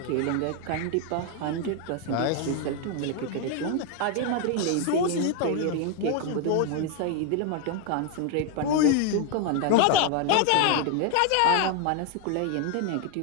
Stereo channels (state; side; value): different; both; correlation 0.01